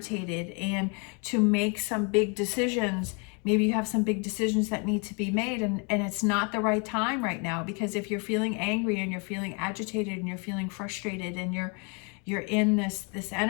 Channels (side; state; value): right; quieter; 34.4 dB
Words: and to make some big decisions. Maybe you have some big decisions that need to be made, and it's not the right time right now, because if you're feeling angry and you're feeling agitated and you're feeling frustrated and you're in this